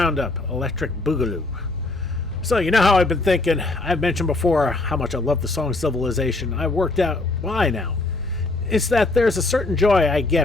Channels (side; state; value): right; quieter; 3.1 dB